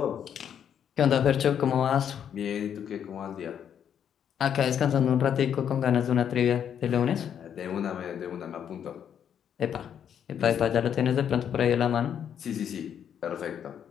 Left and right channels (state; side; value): quieter; right; 8.8 dB